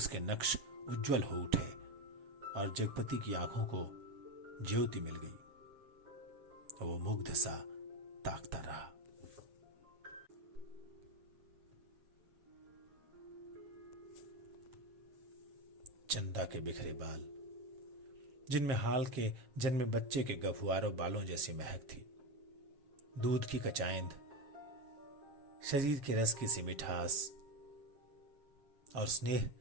नक्श उज्जवल हो उठे और जगपति की आंखों को ज्योति मिल गई। वो मुग्ध सा ताकता रहा। चंदा के बिखरे बाल, जिनमें हाल के जन्मे बच्चे के गफुआरों बालों जैसी महक थी, दूध की कचाइंद, शरीर के रस की सी मिठास और स्नेह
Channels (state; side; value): late; left; 7.3 ms